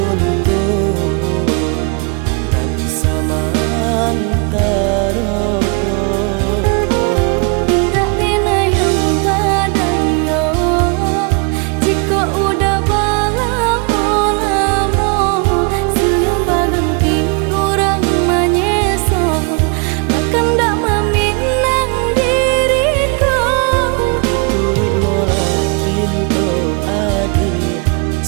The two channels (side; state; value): left; quieter; 35.1 dB